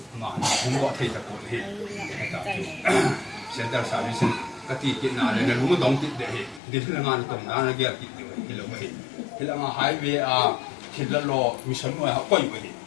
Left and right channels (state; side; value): drops out; right; at 6.6 s